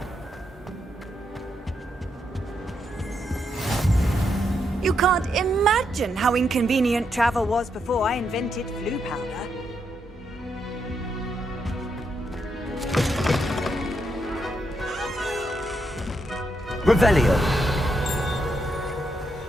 You can't imagine how inconvenient travel was before I invented flu powder. Revelio!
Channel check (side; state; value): both; normal; correlation 0.80